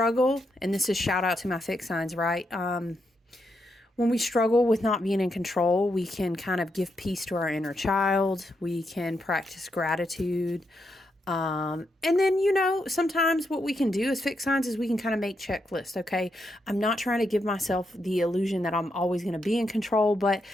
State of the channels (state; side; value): normal; both; correlation 0.82